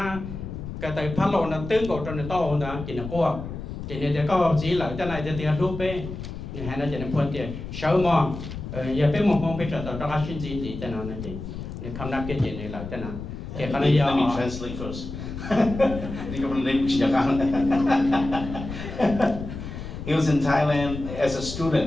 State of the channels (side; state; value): left; noise; rumble, 9 dB below the sound